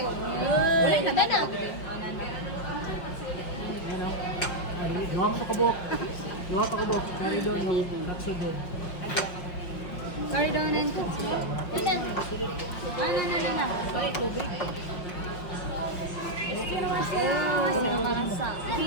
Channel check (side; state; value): right; late; 5.5 ms